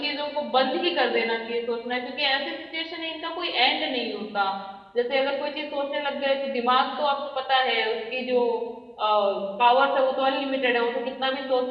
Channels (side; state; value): both; identical; correlation 1.00